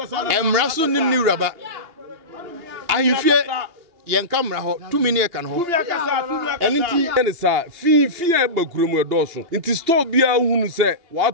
emra so nim ni wuraba ahifie yen kamera ho 2 minute kan ho enti ene sa fi e bakuremu edoso nti store bia hunu se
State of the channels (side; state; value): left; late; 2.8 ms